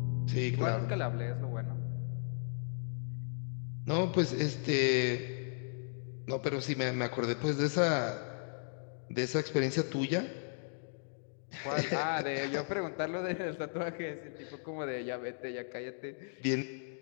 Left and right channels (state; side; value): silent; right; digital silence